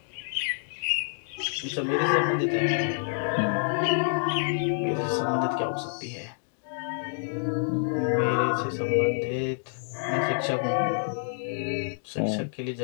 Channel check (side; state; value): right; silent; digital silence